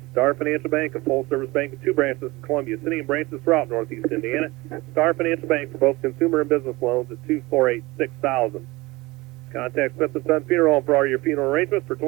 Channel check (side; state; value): left; quieter; 21.8 dB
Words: Star Financial Bank, a full-service bank with 2 branches in Columbia City and branches throughout Northeast Indiana. Star Financial Bank for both consumer and business loans at 248-6000. Contact Smith & Son Funeral Home for all your funeral arrangements. For